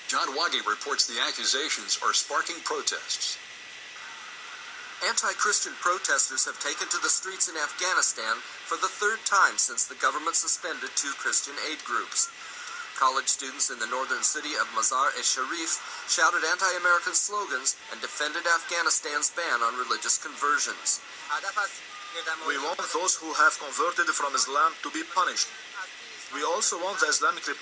John Waggy reports the accusations are sparking protests. Anti-Christian protesters have taken to the streets in Afghanistan for the third time since the government suspended two Christian aid groups. College students in the northern city of Mazar-e-Sharif shouted anti-American slogans and defended Afghanistan's ban on religious conversions. We want those who have converted from Islam to be punished. We also want the Islamic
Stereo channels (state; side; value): identical; both; correlation 1.00